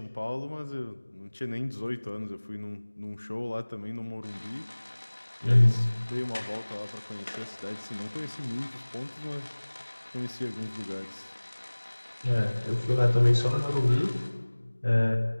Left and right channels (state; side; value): inverted; both; correlation -1.00